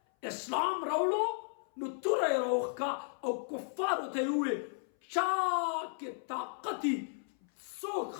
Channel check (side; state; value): right; silent; 55 dB below the other